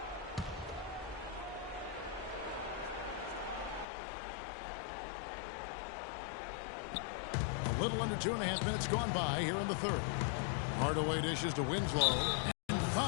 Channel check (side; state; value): right; drops out; at 3.9 s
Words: A little under 2.5 minutes gone by here in the third. Hardaway dishes to Winslow. And